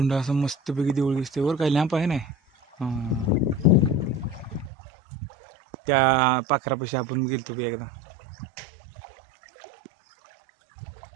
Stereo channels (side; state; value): left; drops out; at 4.7 s